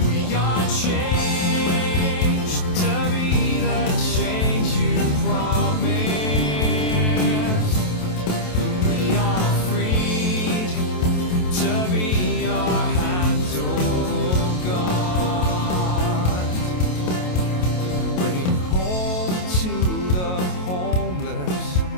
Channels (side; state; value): right; late; 28 ms